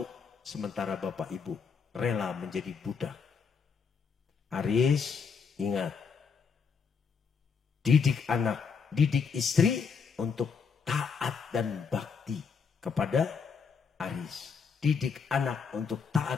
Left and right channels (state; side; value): quieter; right; 5.8 dB